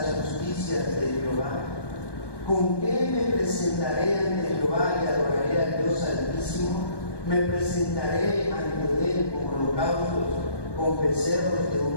justicias de Jehová. ¿Con qué me presentaré ante Jehová y adoraré al Dios Altísimo? Me presentaré ante Él con holocaustos, con becerros de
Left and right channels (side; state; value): right; late; 1.2 ms